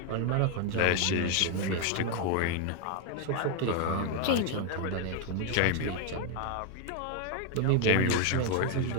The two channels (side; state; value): both; different; correlation 0.01